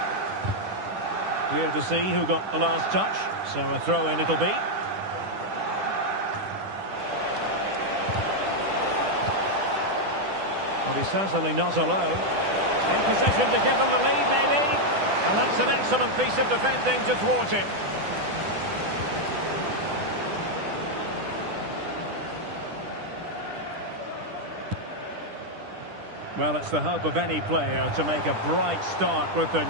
Clear to see who got the last touch, so a throw-in it'll be. Well, he's certainly not alone. In position to give them the lead, maybe. And that's an excellent piece of defending to thwart him. Well, it's the hope of any player to make a bright start with their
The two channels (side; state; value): left; late; 10 ms